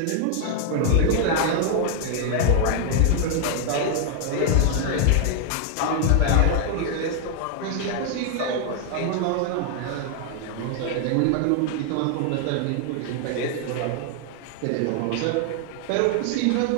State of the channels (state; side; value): different; both; correlation 0.00